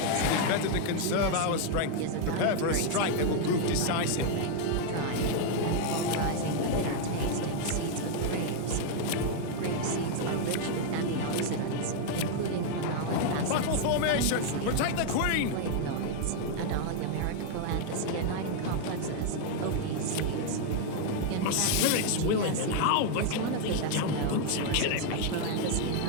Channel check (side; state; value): both; different; correlation 0.00